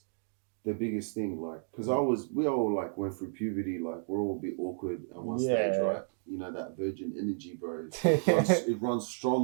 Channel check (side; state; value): left; silent; digital silence